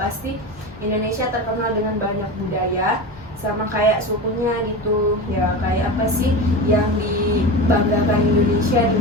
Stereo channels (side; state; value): both; normal; correlation 0.25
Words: Indonesia terkenal dengan banyak budaya, sama kayak sukunya gitu ya. Kayak apa sih yang dibanggakan Indonesia di